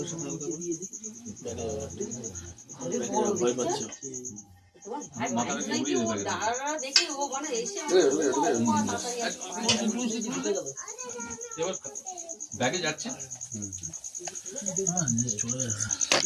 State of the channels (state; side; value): identical; both; correlation 1.00